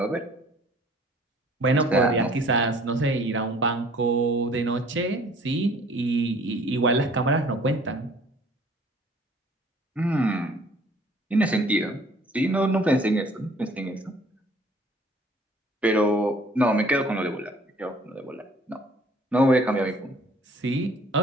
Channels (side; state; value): both; normal; correlation 0.55